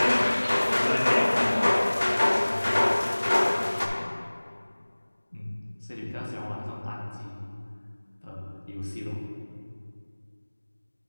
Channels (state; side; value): inverted; both; correlation -1.00